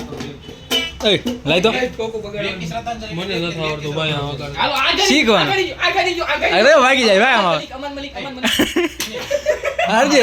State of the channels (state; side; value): identical; both; correlation 1.00